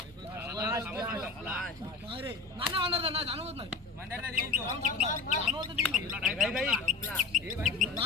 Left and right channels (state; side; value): quieter; right; 4.2 dB